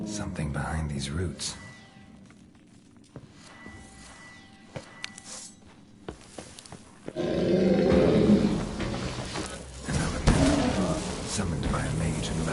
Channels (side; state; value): both; identical; correlation 1.00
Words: Something behind these roots. An elemental, summoned by a mage and